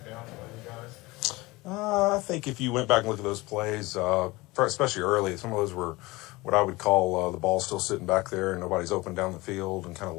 by you guys? I think if you went back and look at those plays, especially early, some of those were what I would call the ball still sitting back there and nobody's open down the field and kind of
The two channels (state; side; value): quieter; right; 21.9 dB